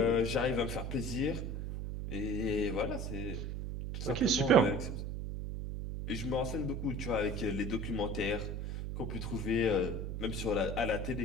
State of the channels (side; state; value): right; noise; hum, 4 dB below the sound